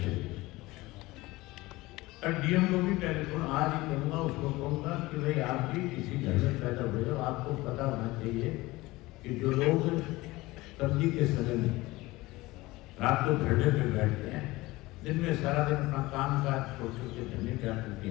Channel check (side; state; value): right; quieter; 20.1 dB